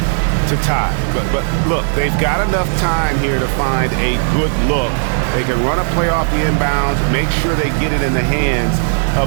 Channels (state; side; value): silent; left; 69 dB below the other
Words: to tie. But look, they've got enough time here to find a good look. They can run a play off the inbounds, make sure they get it in the hands